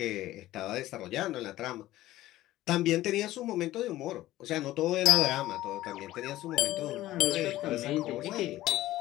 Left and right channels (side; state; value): right; quieter; 15.7 dB